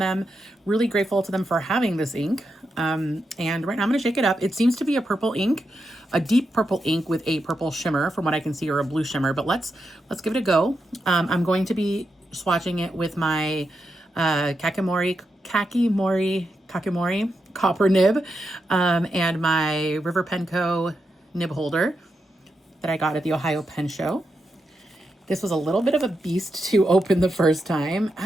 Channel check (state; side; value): normal; both; correlation 0.86